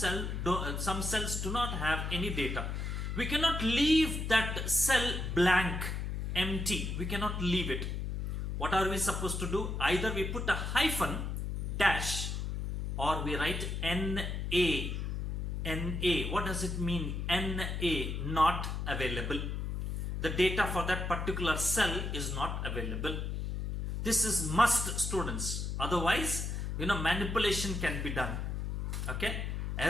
do not have any data. We cannot leave that cell blank, empty. We cannot leave it. What are we supposed to do? Either we put a hyphen, dash, or we write NA. NA. What does it mean? NA, not available. The data for that particular cell is not available. This is must, students. Otherwise, manipulation can be done. Okay,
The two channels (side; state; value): left; noise; hum, 3 dB below the sound